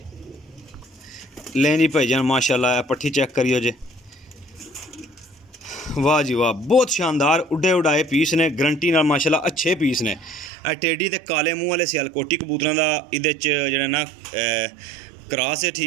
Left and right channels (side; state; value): left; drops out; at 10.5 s